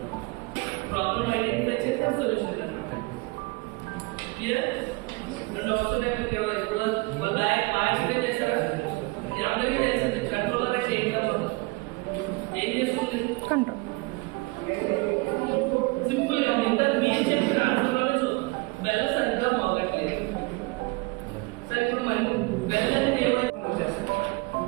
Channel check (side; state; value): left; quieter; 25.6 dB